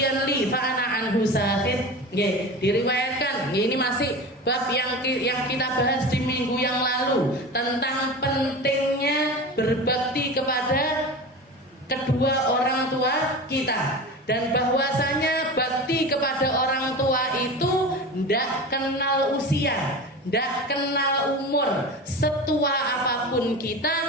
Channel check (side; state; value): both; normal; correlation 0.30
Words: li fa ana anhu sakhit. Nggih, diriwayatkan, ini masih bab yang kita bahas di minggu yang lalu tentang pentingnya berbakti kepada kedua orang tua kita, dan bahwasanya bakti kepada orang tua itu ndak kenal usia, ndak kenal umur. Setua apapun